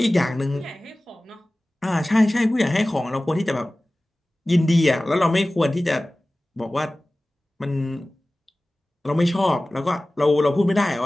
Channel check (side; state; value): both; normal; correlation 0.97